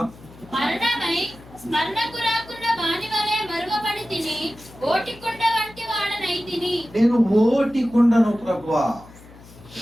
మరణమై స్మరణకు రాకున్న వాని వలె మరవబడితిని, ఓటి కుండ వంటి వాడనైతిని. నేను ఓటి కుండను ప్రభువా.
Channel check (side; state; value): left; noise; hum, 21 dB below the sound